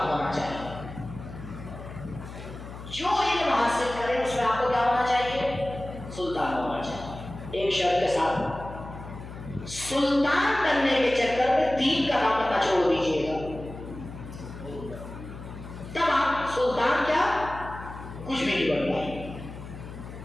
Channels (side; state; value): left; noise; hum, 12 dB below the sound